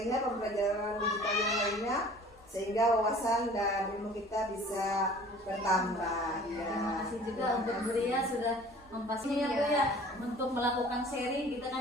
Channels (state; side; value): normal; both; correlation 0.48